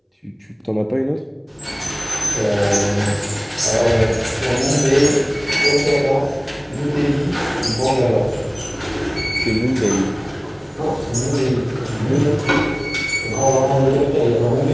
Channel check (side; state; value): both; identical; correlation 1.00